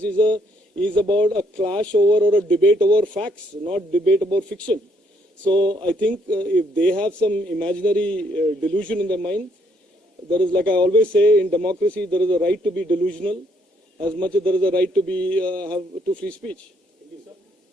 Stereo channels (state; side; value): normal; both; correlation 0.70